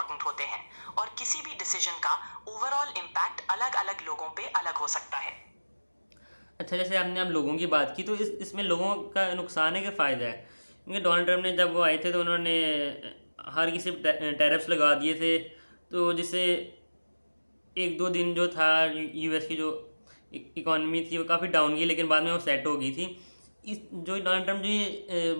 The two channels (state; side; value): inverted; both; correlation -1.00